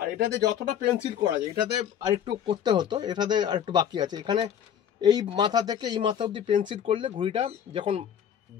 এটাতে যতটা পেন্সিল করা যায়, এটাতে আরেকটু করতে হতো, এটাতে আরেকটু বাকি আছে। এখানে এই মাথা থেকে এই মাথা অবধি পেন্সিল করলে ঘুড়িটা যখন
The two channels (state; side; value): quieter; right; 9.1 dB